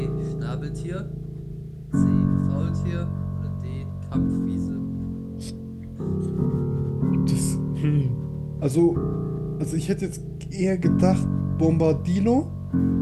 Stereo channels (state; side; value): identical; both; correlation 1.00